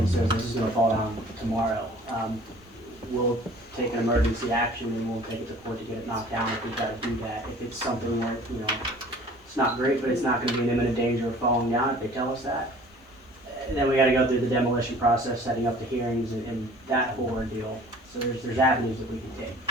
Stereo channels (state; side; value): normal; both; correlation 0.49